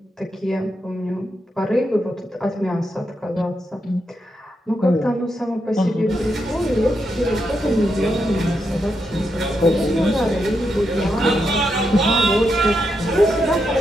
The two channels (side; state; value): both; normal; correlation 0.83